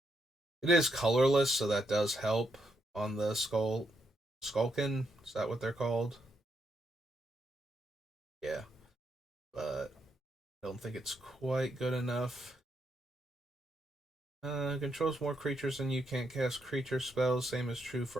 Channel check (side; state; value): both; normal; correlation 0.79